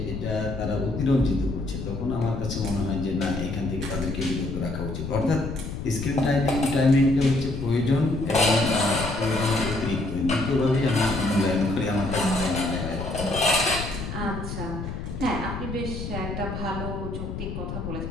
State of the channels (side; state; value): left; noise; rumble, 6 dB below the sound